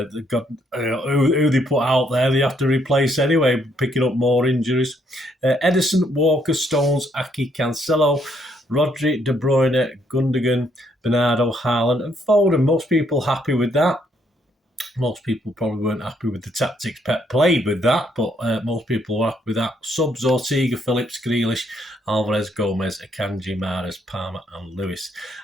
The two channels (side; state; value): both; normal; correlation 0.71